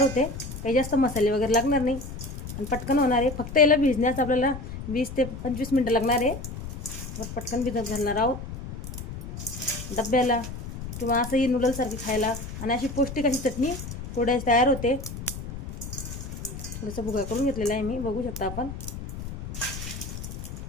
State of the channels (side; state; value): left; noise; rumble, 9 dB below the sound